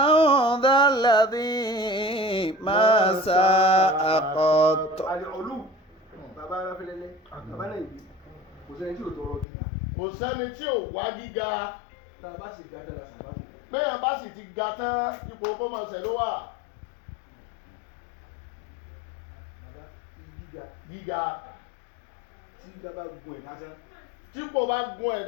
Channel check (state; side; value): drops out; right; at 9.5 s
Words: ذا الذي ما ساء قط àlè ọlù bàbá aráfẹ́lẹ́lẹ́ bàbá náà ìbí kò sẹ́ni tí ò tọrọ gíga kò sẹ́ni tí ò wá gíga tá a bá sì gbà tẹ́lá sàbábù péyàn bá sì ti ga tán ipò kó mọ̀ ṣẹ̀ ló wà bàbá gíga gíga tí gíga bá gun ẹ̀ lásán tí kò bá gun